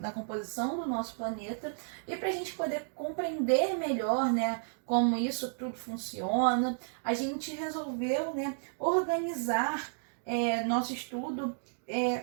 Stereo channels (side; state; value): left; silent; digital silence